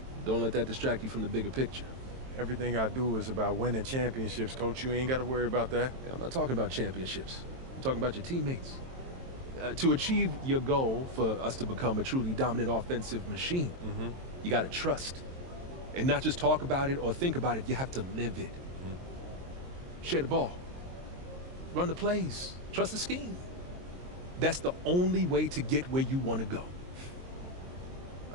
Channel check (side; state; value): left; late; 23 ms